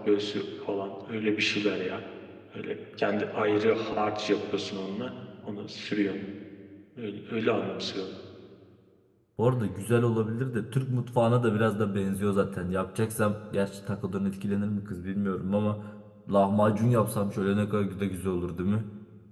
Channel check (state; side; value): identical; both; correlation 1.00